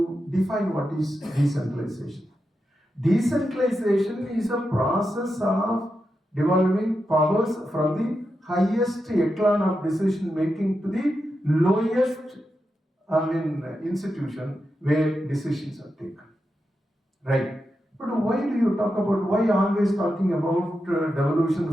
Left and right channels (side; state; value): both; normal; correlation 0.88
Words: define what is decentralization. Decentralization is a process of devolving powers from the highest echelon of decision making to the lowest institution where decisions are taken. Right. But why do you talk about, why always talking about devolution